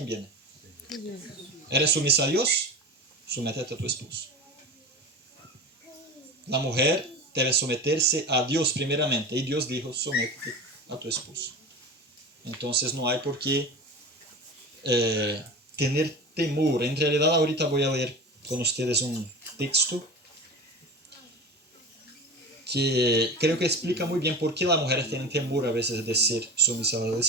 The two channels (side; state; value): both; normal; correlation 0.30